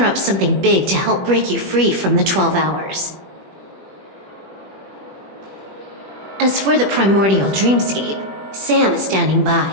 up something big to help break you free from the 12 hours. As for the primordial dreamscape, Sam is standing by,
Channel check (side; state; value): left; late; 21 ms